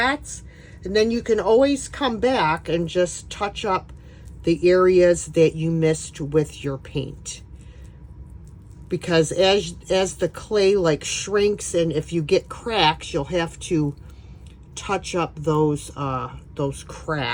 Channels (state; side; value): identical; both; correlation 1.00